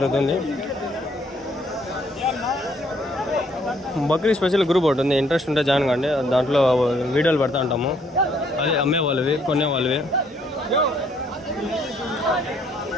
బక్రీ స్పెషల్ గ్రూప్ ఒకటి ఉంది, ఇంట్రెస్ట్ ఉంటే జాయిన్ కండి. దాంట్లో వీడియోలు పెడతా ఉంటాము, అది అమ్మే వాళ్ళవి కొనే వాళ్ళవి.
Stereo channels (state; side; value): normal; both; correlation 0.66